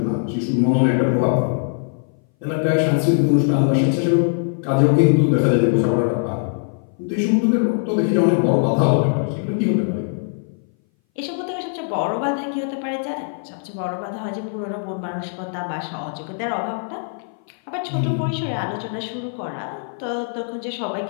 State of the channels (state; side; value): silent; right; 60 dB below the other